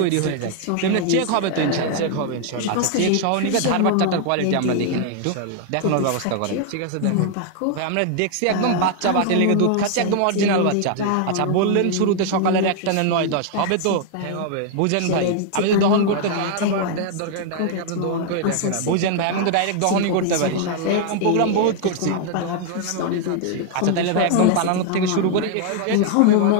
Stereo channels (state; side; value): different; both; correlation 0.00